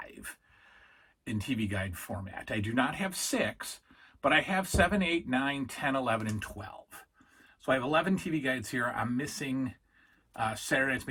in TV guide format. I do not have 6, but I have 7, 8, 9, 10, 11, and 12. So I have 11 TV guides here. I'm missing Saturday night's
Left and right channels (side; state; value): both; identical; correlation 1.00